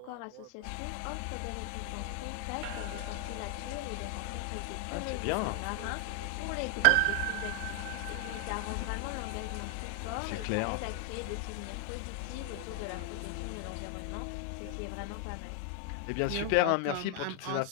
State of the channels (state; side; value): different; both; correlation 0.00